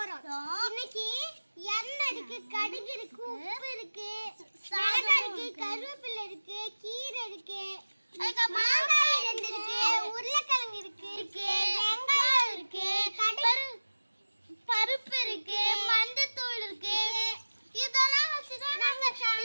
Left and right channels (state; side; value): inverted; both; correlation -1.00